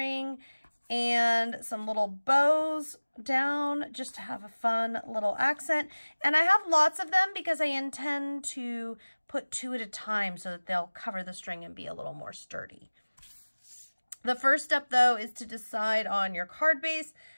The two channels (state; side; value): inverted; both; correlation -1.00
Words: and some little bows down just to have a fun little accent. And I have lots of them because I intend to put 2 at a time so that they'll cover the string and be a little more sturdy. The first step, though, is to decide on your card base,